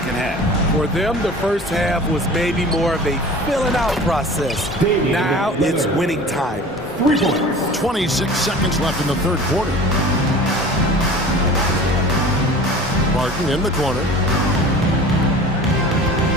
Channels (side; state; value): both; normal; correlation 0.41